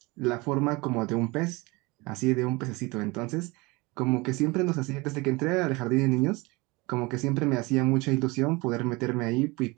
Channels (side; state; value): left; quieter; 24.5 dB